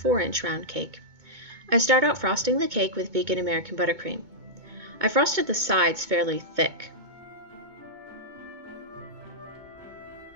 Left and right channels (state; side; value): late; left; 2.2 ms